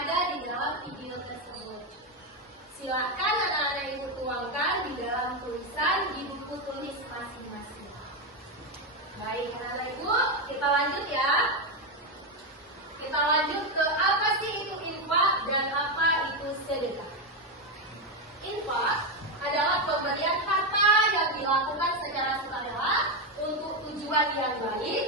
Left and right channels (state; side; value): normal; both; correlation 0.08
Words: di dalam video tersebut? Silakan anak-anak Ibu tuangkan di dalam tulisan di buku tulis masing-masing. Baik, anak-anak Ibu, kita lanjut ya. Kita lanjut ke apa sih itu infak dan apa itu sedekah. Infak adalah pemberian harta yang dilakukan secara sukarela untuk tujuan yang baik.